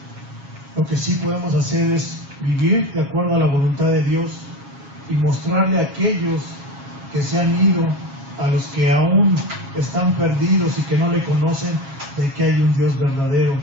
Lo que sí podemos hacer es vivir de acuerdo a la voluntad de Dios y mostrarle a aquellos que se han ido, a los que aún están perdidos y que no le conocen, de que hay un Dios verdadero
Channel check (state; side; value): late; left; 7.3 ms